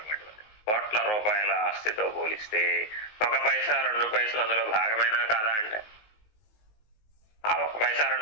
కోట్ల రూపాయల ఆస్తితో పోలిస్తే 1 పైసా 2 పైసలు అందులో భాగమేనా కాదా అంటే ఆ 1 పైసా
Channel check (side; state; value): right; late; 19 ms